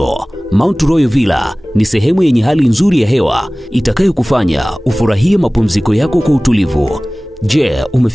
Mount Royal Villa ni sehemu yenye hali nzuri ya hewa itakayokufanya ufurahie mapumziko yako kwa utulivu. Je,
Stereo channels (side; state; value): both; normal; correlation 0.98